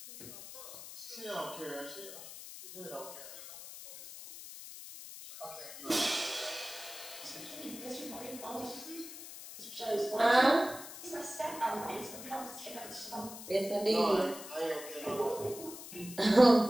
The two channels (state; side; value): noise; left; hiss, 12 dB below the sound